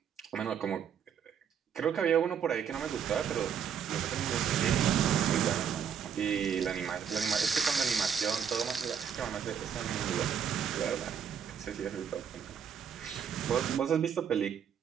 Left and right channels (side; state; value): left; quieter; 7.9 dB